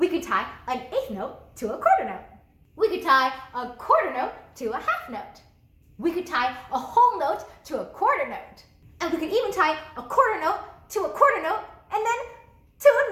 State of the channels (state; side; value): identical; both; correlation 1.00